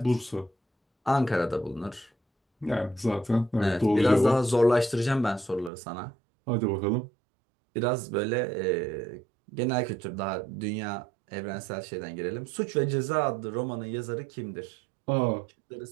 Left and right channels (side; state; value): left; drops out; at 5.7 s